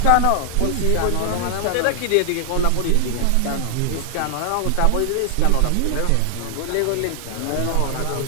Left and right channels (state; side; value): different; both; correlation 0.00